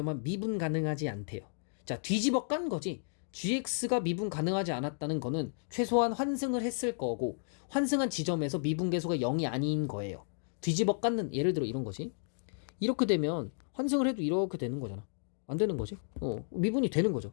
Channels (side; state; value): right; silent; digital silence